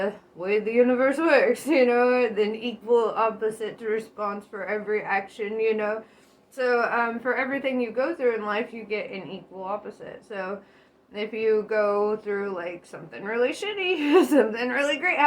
way the universe works, you know, an equal opposite response for every action, you know. So for everything you go through in life, you get an equal opposite. So if you go through like something really shitty, something really great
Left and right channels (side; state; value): both; identical; correlation 1.00